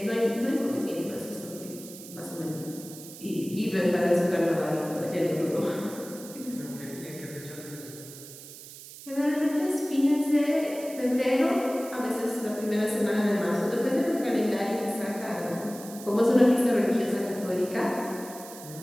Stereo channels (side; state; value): right; noise; hiss, 15 dB below the sound